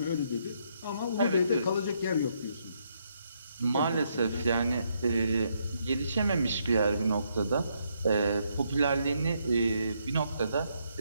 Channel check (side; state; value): both; inverted; correlation -0.75